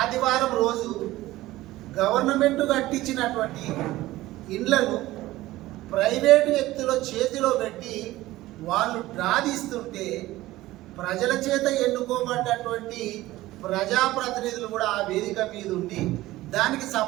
రోజు గవర్నమెంట్ కట్టించినటువంటి ఇండ్లను ప్రైవేటు వ్యక్తుల చేతిలో పెట్టి వాళ్ళు డ్రాదీస్తుంటే ప్రజల చేత ఎన్నుకోబడ్డటువంటి ప్రజాప్రతినిధులు కూడా ఆ వేదిక మీద ఉండి దానికి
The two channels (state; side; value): quieter; left; 17.1 dB